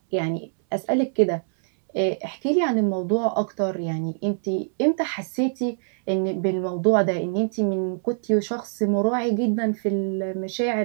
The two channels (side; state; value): left; silent; 63 dB below the other